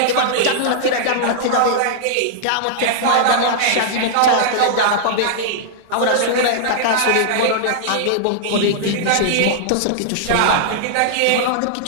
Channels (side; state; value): both; different; correlation -0.01